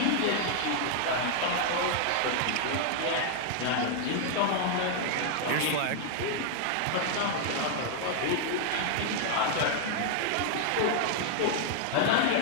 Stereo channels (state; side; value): different; both; correlation 0.00